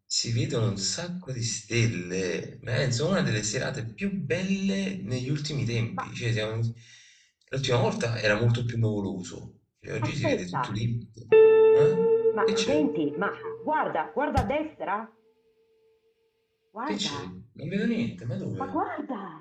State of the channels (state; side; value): identical; both; correlation 1.00